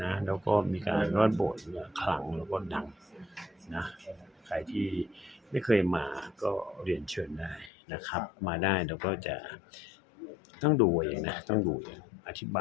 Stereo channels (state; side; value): drops out; right; at 7.7 s